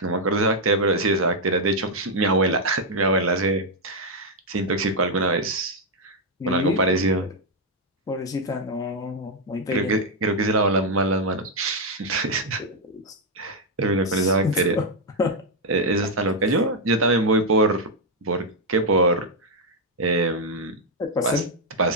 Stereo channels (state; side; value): normal; both; correlation -0.01